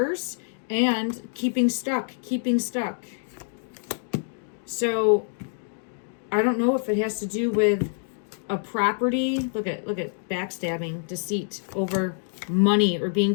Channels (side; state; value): right; silent; 61 dB below the other